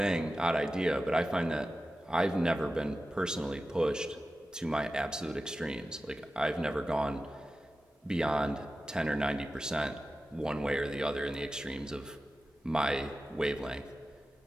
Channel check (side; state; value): both; normal; correlation 0.94